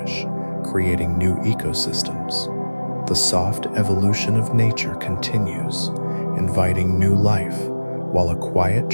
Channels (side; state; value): both; inverted; correlation -1.00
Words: creating new ecosystems. The soft evolution of nature continues, inviting new life, while a quiet